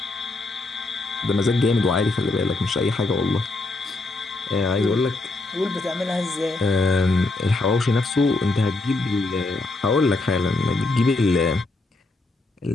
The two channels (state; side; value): quieter; right; 3.1 dB